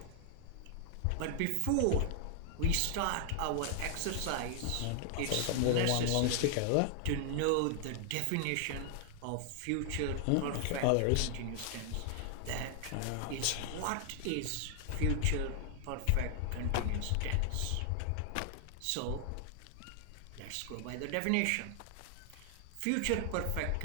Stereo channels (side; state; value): both; different; correlation 0.00